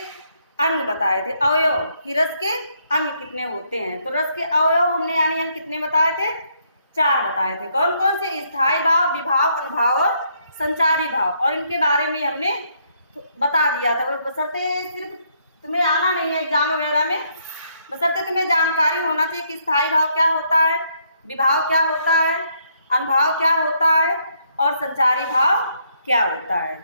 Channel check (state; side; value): inverted; both; correlation -0.72